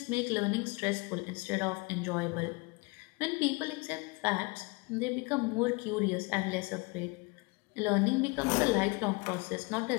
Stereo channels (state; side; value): quieter; right; 27.2 dB